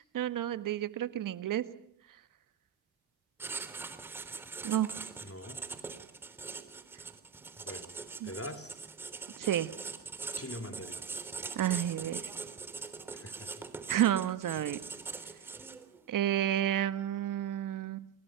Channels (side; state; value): left; quieter; 9.3 dB